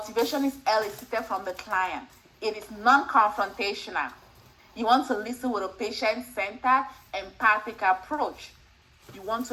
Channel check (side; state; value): both; identical; correlation 1.00